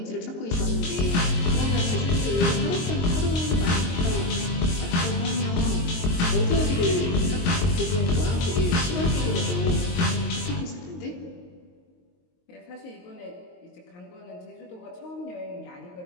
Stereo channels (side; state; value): right; late; 22 ms